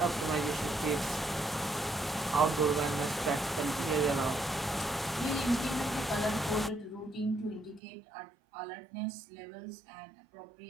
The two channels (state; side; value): drops out; left; at 7.8 s